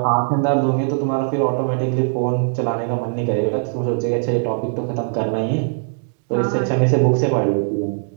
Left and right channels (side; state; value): left; silent; digital silence